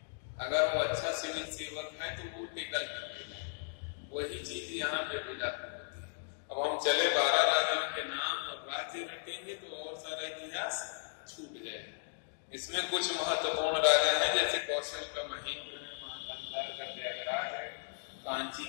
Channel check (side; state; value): right; silent; digital silence